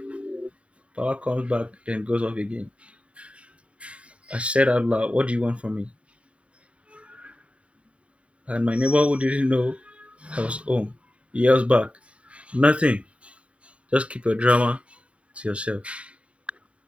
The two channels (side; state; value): left; late; 0.063 ms